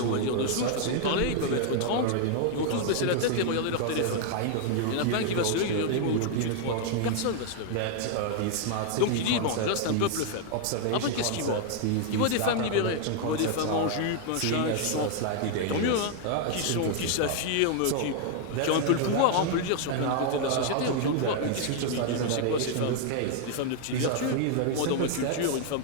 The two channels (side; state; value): both; different; correlation 0.00